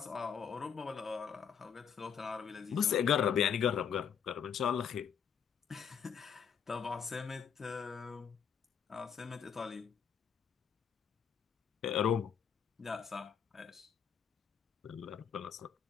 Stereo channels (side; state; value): right; quieter; 7.6 dB